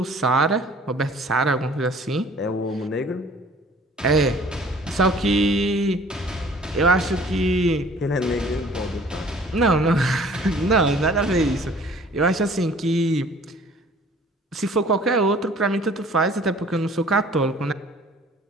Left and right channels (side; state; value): both; normal; correlation 0.52